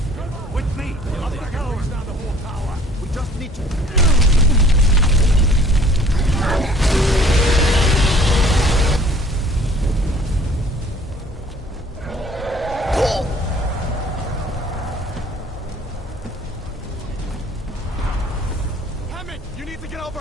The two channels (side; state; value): both; normal; correlation 0.54